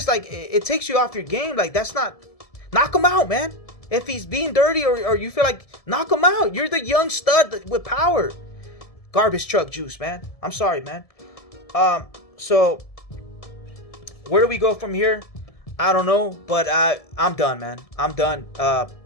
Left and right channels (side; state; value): right; late; 1.7 ms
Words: like, it takes you off your game. Like, that's not, knock him out, man. If he's being dirty, or you feel like, knock him out. You're the young stud with power. Garbage truck juice, man. I'm sorry, man. So where do we go from here? I don't know, but I'm done, man. I'm done. I